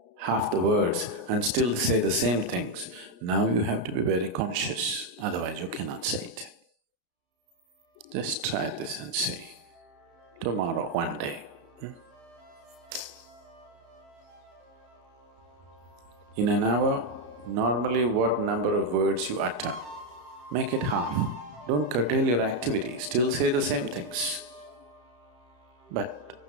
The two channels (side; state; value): left; late; 33 ms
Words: half the words and still say the same things, now you have to be very conscious, otherwise you cannot say it. Just try this and see. Tomorrow, one day. In an hour, normally what number of words you utter, make it half. Don't curtail your activity, still say the same things. But